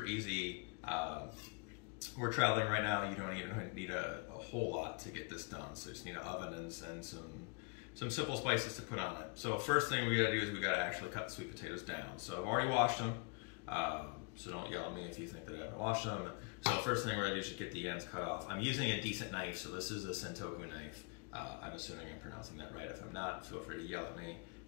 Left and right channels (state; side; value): quieter; right; 32.6 dB